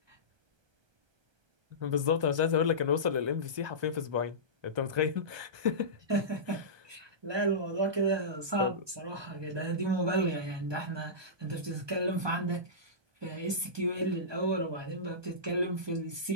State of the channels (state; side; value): late; left; 1.2 ms